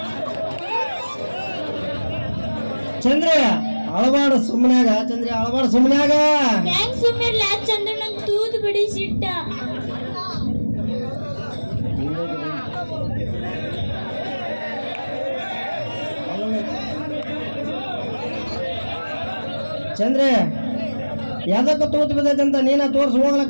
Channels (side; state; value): both; inverted; correlation -1.00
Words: ಚಂದ್ರ ಅಳಬಾಡ ಸುಮ್ಮನಾಗ ಚಂದ್ರ ಅಳಬಾಡ ಸುಮ್ಮನಾಗ ಹೆಂಗ್ ಸುಮ್ಮನಿರ್ಲ ಚಂದ್ರ ನಂಗೆ ತೂತು ಬಿಡಿಸಿಟ್ಟ ಚಂದ್ರ ಯಾವ್ದಕ್ಕ ತೂತ್ ಬಿದ್ದೈತಂತ ನೀನ ತೋರ್ಸ್ ಹೋಗ್ಲ